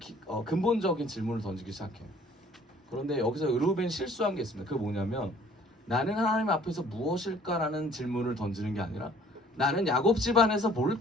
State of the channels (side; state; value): both; normal; correlation 0.55